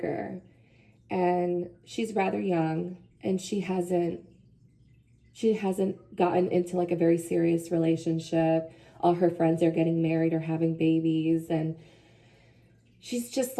and she's rather young, and she hasn't gotten into like a very serious relationship. All her friends are getting married or having babies, and she's just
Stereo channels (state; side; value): identical; both; correlation 1.00